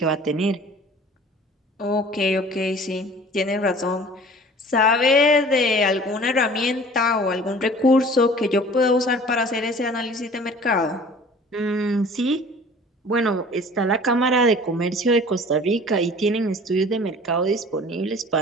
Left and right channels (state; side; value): normal; both; correlation 0.47